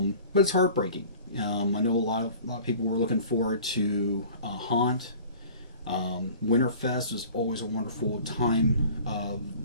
it's heartbreaking. I know a lot of people were looking forward to Haunt. Winterfest is always a wonderful time of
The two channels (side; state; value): both; inverted; correlation -0.45